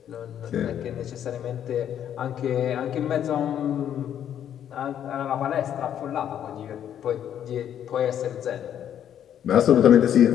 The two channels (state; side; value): quieter; right; 9.9 dB